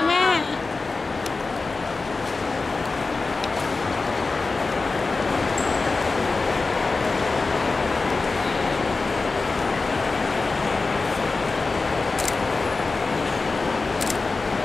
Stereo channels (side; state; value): right; quieter; 3.9 dB